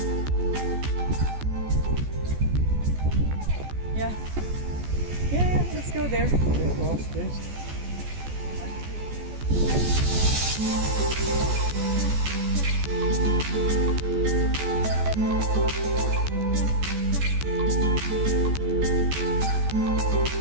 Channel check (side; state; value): left; late; 14 ms